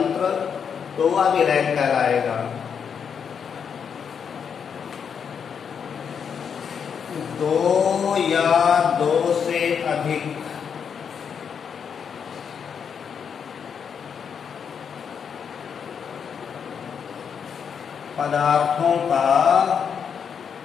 तो वह विलयन कहलाएगा। 2 या 2 से अधिक पदार्थों का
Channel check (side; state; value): right; quieter; 7.1 dB